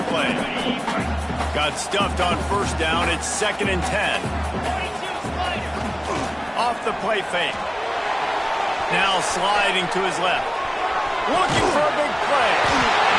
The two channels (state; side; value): identical; both; correlation 1.00